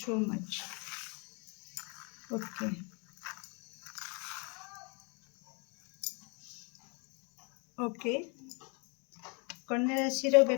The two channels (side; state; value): right; quieter; 33.7 dB